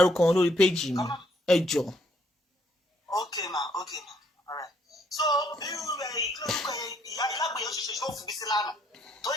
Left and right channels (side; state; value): both; normal; correlation 0.69